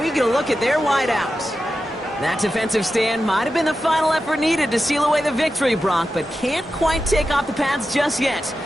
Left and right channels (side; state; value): both; normal; correlation 0.91